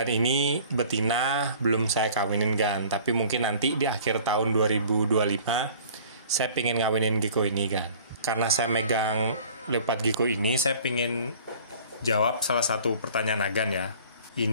ini betina belum saya kawinin kan. Tapi mungkin nanti di akhir tahun 2025 saya pengen ngawinin gecko ini kan. Karena saya megang leopard gecko ini, saya pengen jawab salah satu pertanyaan Agan ya.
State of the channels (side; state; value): both; inverted; correlation -0.49